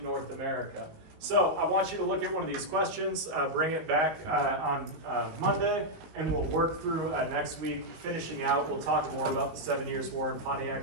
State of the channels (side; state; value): left; late; 19 ms